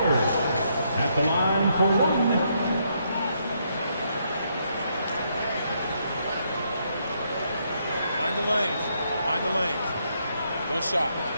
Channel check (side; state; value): both; inverted; correlation -0.75